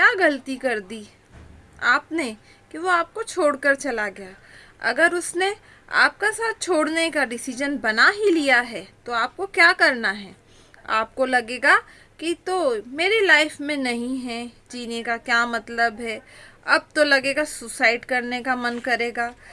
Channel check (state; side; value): identical; both; correlation 1.00